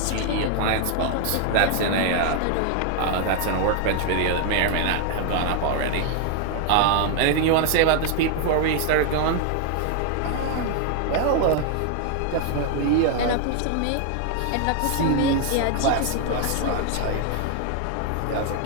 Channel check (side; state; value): both; different; correlation 0.00